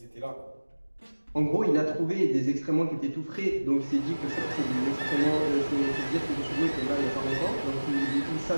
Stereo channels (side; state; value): both; inverted; correlation -1.00